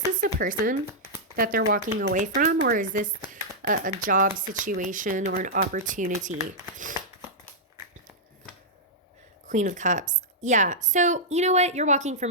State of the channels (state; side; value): normal; both; correlation -0.08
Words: a person that they're walking away from, or is this a job situation or an opportunity? Queen of Cups. Yeah, so you know what? You're walking